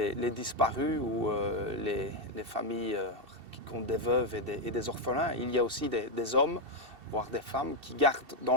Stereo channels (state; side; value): late; left; 2.7 ms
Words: disparus ou les familles qui comptent des veuves et des orphelins. Il y a aussi des hommes, voire des femmes, qui gardent